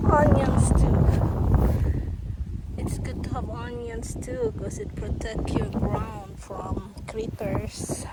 onions too. It's good to have onions too, because it protects your ground from critters.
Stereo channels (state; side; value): identical; both; correlation 1.00